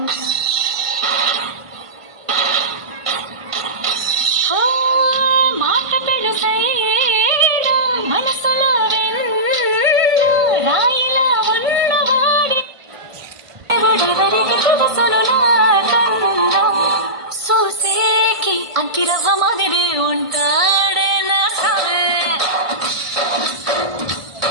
మాట పెడుసైనా మనసులో రాయిలా ఉన్నవాడి ఎవరెవరికి తెలుసును నాకన్నా చూసేకి అంకిరవ్వ మాదిరి ఉంటాడే నా సామే.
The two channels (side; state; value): left; late; 1.5 ms